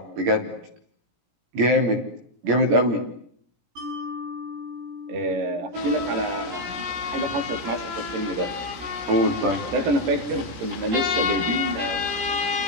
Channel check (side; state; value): left; late; 17 ms